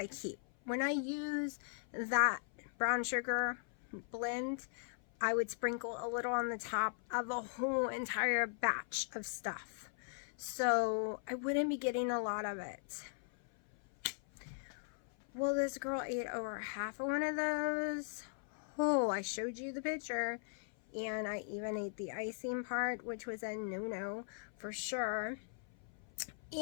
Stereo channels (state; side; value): silent; right; 52 dB below the other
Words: keep. When I use that brown sugar blend, I would sprinkle a little on the top of a whole entire batch of stuff. So I wouldn't be getting a lot of it. Well, this girl ate over half of one of those. Oh, I showed you the picture. And I even ate the icing part, which was a no-no for sure.